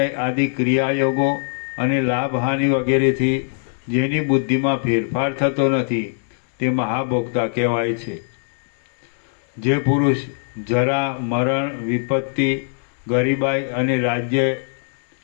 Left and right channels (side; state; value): right; silent; 65 dB below the other